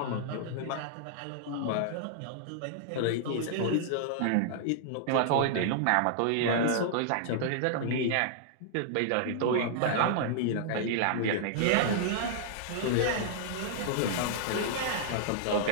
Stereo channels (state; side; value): different; both; correlation -0.01